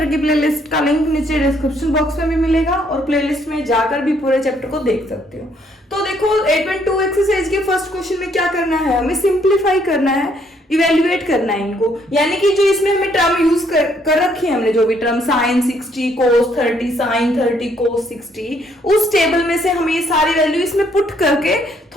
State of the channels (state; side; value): normal; both; correlation 0.68